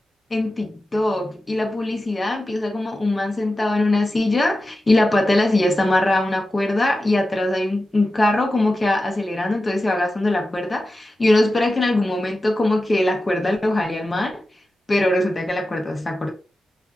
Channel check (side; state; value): both; normal; correlation 0.93